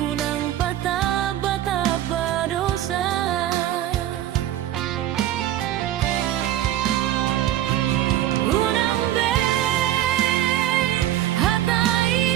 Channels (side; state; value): left; quieter; 12.7 dB